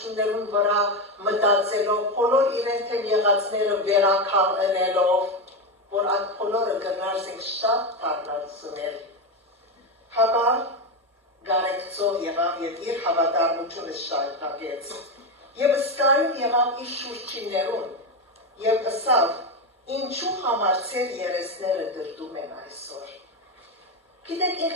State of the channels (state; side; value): normal; both; correlation 0.12